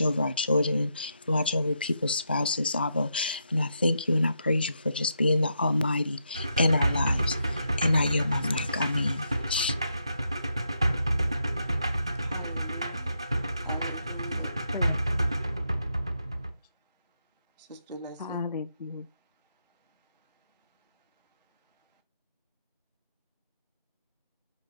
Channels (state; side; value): inverted; both; correlation -0.81